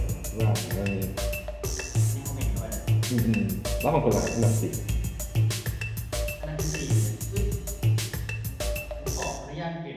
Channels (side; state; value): both; identical; correlation 1.00